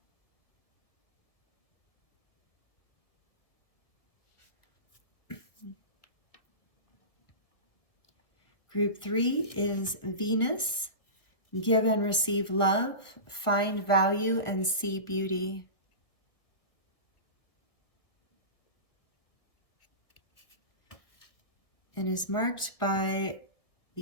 Group three is Venus, give and receive love, find value, and see beauty. And is marked by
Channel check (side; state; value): right; late; 1.5 ms